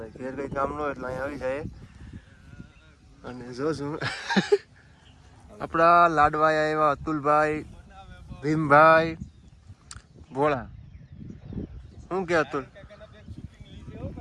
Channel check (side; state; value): both; identical; correlation 1.00